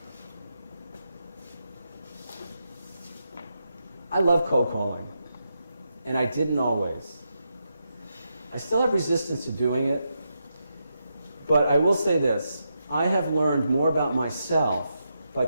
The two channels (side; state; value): both; inverted; correlation -0.84